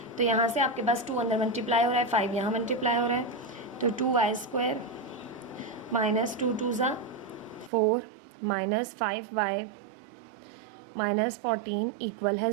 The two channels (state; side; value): drops out; left; at 7.7 s